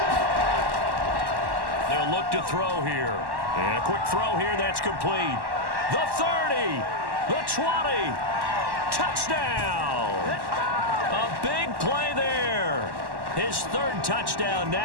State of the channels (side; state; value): left; late; 1.1 ms